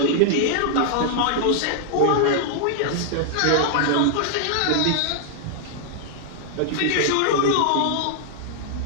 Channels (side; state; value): both; different; correlation 0.00